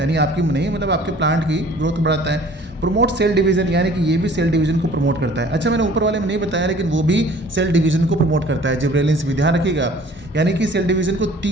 आपकी नहीं मतलब आपके प्लांट की ग्रोथ को बढ़ाता है। प्रमोट सेल डिवीजन, यानी कि ये भी सेल डिवीजन को प्रमोट करता है। अच्छा, मैंने ऊपर वाले में नहीं बताया, लेकिन वो भी सेल डिवीजन को प्रमोट करता है, जिब्रेलिन्स भी, ध्यान रखिएगा, यानी कि सेल डिवीजन को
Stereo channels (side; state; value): both; normal; correlation 0.51